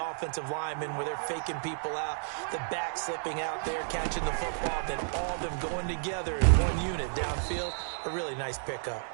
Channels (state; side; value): silent; left; digital silence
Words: offensive linemen where they're faking people out, the back slipping out there, catching the football, then all of them going together in one unit downfield. A really nice pickup.